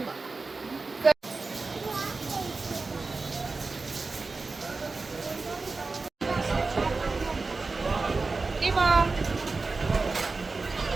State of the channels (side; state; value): left; quieter; 3.9 dB